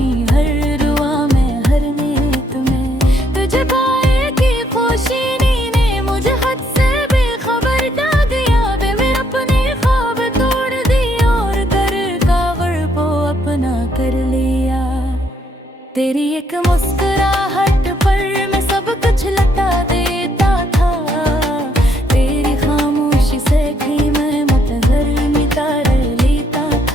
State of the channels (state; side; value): normal; both; correlation 0.71